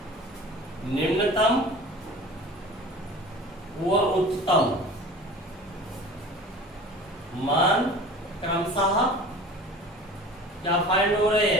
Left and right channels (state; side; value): normal; both; correlation 0.41